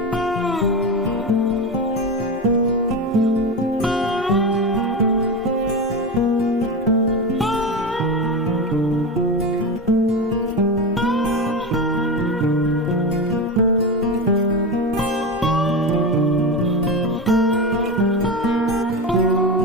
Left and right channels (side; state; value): both; normal; correlation 0.20